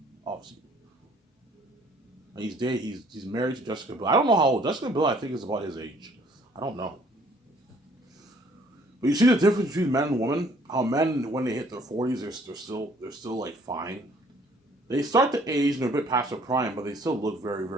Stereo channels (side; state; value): both; normal; correlation 0.59